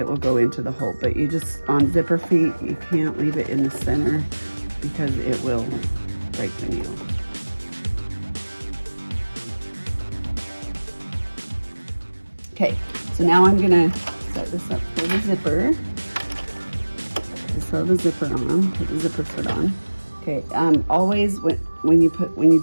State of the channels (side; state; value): both; inverted; correlation -1.00